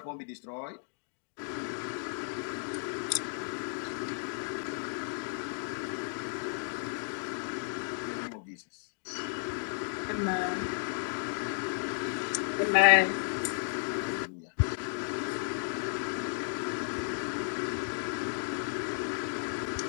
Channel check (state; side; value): silent; right; digital silence